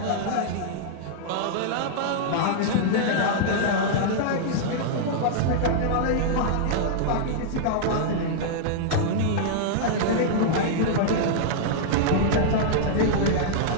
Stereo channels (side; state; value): both; different; correlation -0.01